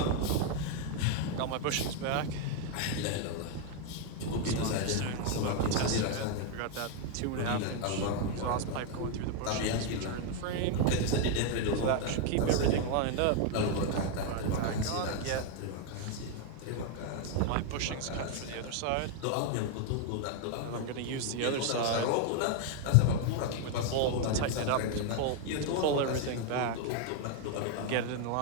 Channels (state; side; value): different; both; correlation 0.00